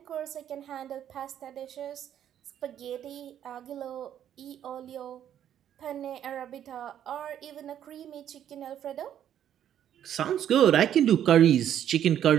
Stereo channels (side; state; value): left; quieter; 10.3 dB